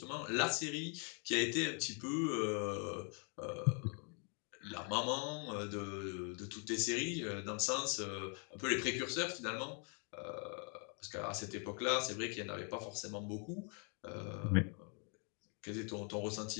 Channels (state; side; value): quieter; right; 38.8 dB